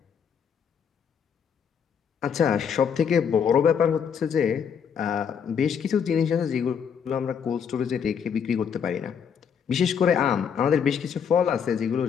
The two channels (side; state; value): right; quieter; 7.3 dB